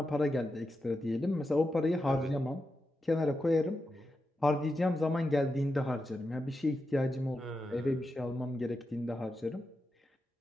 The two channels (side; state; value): both; normal; correlation 0.88